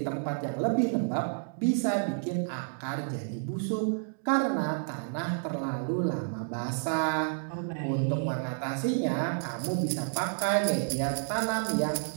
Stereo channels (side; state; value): left; silent; digital silence